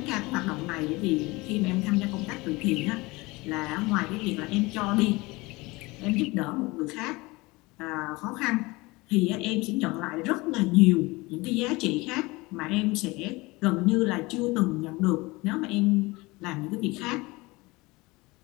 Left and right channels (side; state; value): right; quieter; 23.0 dB